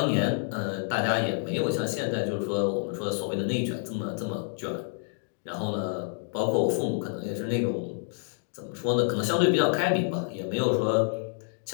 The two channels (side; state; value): right; silent; 59 dB below the other